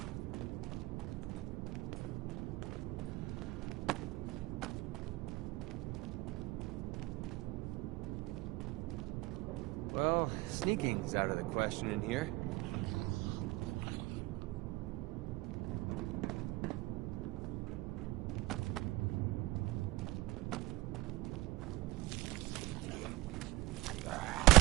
Well, sneaking's out of the question in here.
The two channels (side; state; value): left; quieter; 19.8 dB